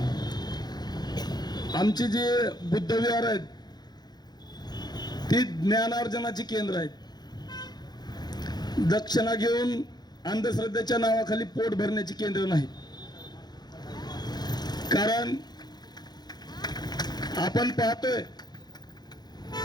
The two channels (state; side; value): late; right; 0.20 ms